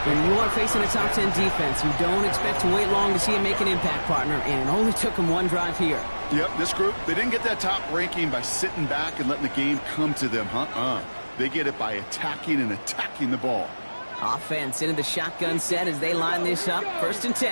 When you are facing a top 10 defense, you don't expect to wait long to see him make an impact, partner, and it only took him 1 drive here. Yep, this group, they didn't get that top ranking by sitting back and letting the game come to them, They get it by attacking the ball. Offense into the shotgun set as they line this up. 1st and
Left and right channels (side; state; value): both; inverted; correlation -1.00